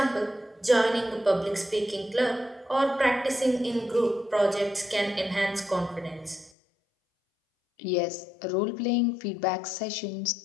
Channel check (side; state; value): right; drops out; at 6.5 s